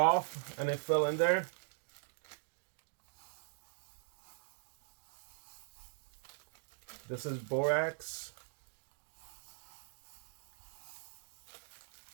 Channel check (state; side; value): silent; left; digital silence